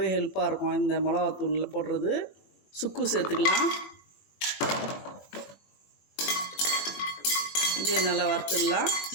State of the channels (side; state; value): right; late; 21 ms